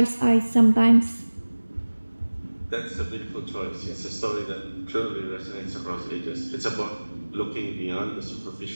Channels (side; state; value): both; inverted; correlation -1.00